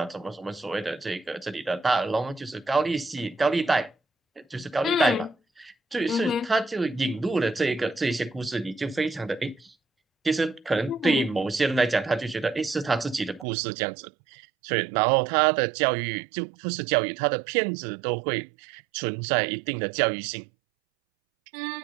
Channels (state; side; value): drops out; left; at 13.5 s